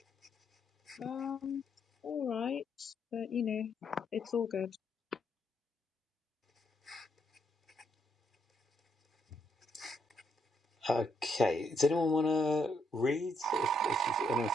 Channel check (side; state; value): both; normal; correlation 0.76